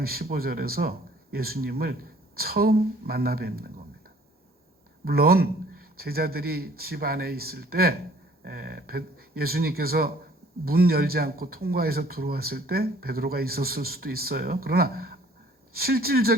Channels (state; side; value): normal; both; correlation 0.56